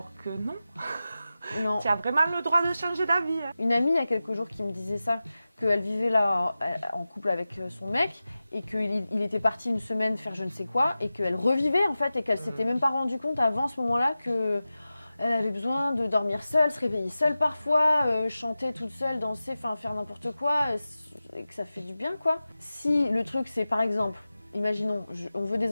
que non. Non. Tu as vraiment le droit de changer d'avis. Une amie il y a quelques jours qui me disait ça, qu'elle vivait là en couple avec son mec et qu'il était parti une semaine faire je ne sais quoi et qu'elle revivait en fait et qu'elle s'était même pas rendu compte avant ce moment-là que elle avait besoin de dormir seule, se réveiller seule parfois, chanter toute seule, danser, enfin faire n'importe quoi et que ça fait du bien, quoi. Si le truc c'est par exemple, imaginons, on veut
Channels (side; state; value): both; inverted; correlation -0.95